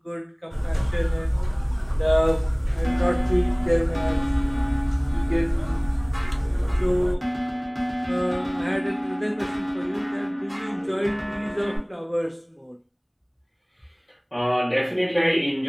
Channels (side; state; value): both; identical; correlation 1.00